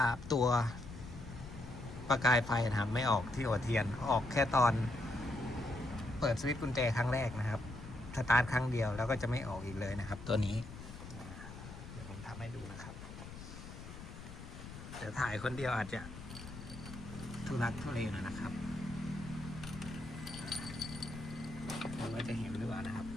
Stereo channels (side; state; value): left; noise; rumble, 12 dB below the sound